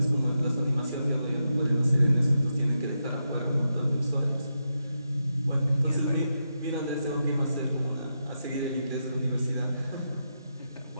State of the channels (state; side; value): inverted; both; correlation -0.86